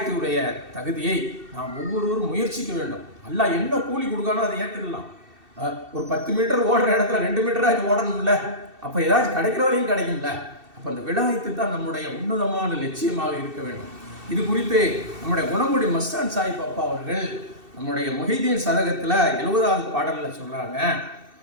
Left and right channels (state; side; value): late; left; 2.7 ms